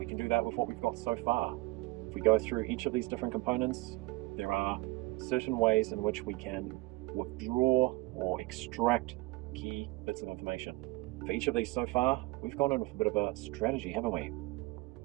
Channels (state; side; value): quieter; left; 23.0 dB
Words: can do that with what we've got so far. If we go through each of these different components, there are certain ways in which we can withdraw or extract key bits of information. For each of these so far, we've gone in with a bit of a strategy, haven't we?